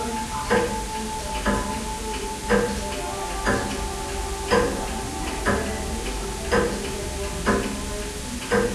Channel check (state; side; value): identical; both; correlation 1.00